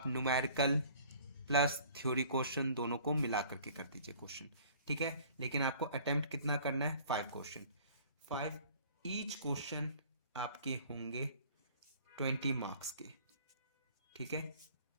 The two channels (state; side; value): inverted; both; correlation -0.51